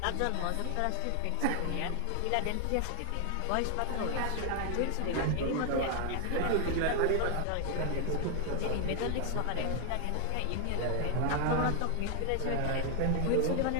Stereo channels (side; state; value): both; different; correlation 0.00